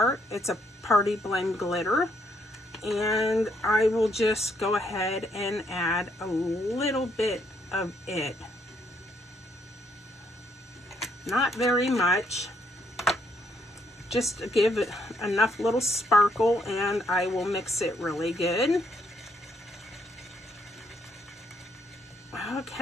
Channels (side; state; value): both; normal; correlation 0.72